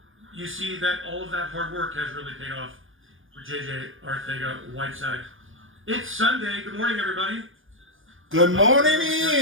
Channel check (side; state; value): left; late; 0.59 ms